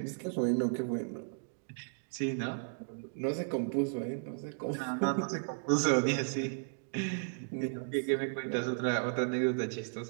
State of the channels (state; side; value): silent; left; digital silence